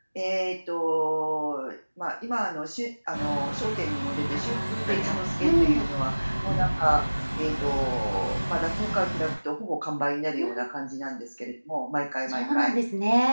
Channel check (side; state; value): both; inverted; correlation -1.00